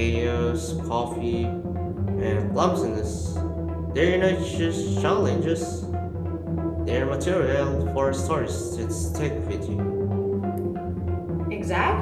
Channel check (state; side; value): identical; both; correlation 1.00